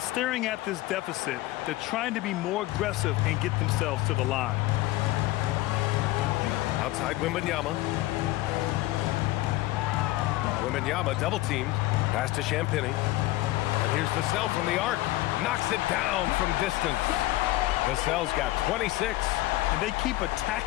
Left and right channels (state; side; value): quieter; right; 17.7 dB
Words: at this deficit, they're trying to be more aggressive and get themselves to the line. Outside Wembanyama. Wembanyama double teamed. Pass to Champagnie. And here's Vassell from the arc. Knocks it down from distance. Vassell's got 26. And they keep